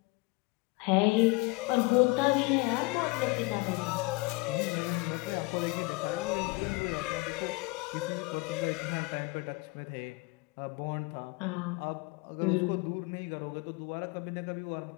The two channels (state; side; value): quieter; right; 25.7 dB